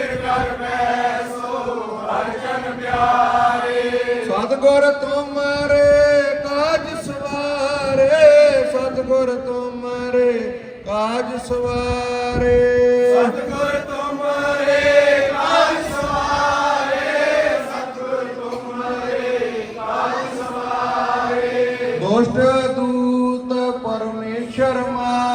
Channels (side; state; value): both; identical; correlation 1.00